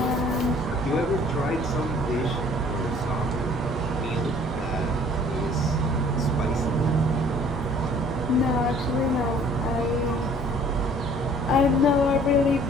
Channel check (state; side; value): normal; both; correlation 0.54